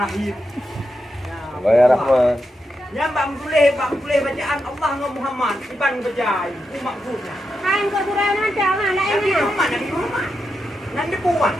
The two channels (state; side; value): normal; both; correlation 0.86